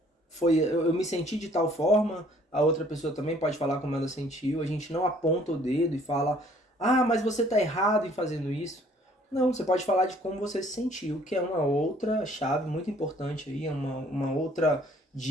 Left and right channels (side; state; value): both; normal; correlation 0.58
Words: eu me senti de tal forma, a outra pessoa também pode falar como ela sentiu, a gente não aponta o dedo e fala, mas você tá errado em fazendo isso. Não, você pode falar de como você se sentiu, que é uma outra chave muito importante aí, uma outra